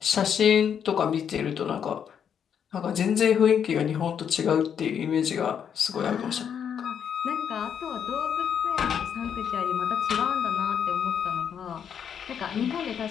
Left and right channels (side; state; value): right; quieter; 8.0 dB